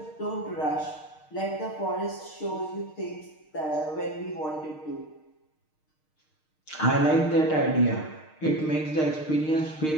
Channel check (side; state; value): right; late; 6.5 ms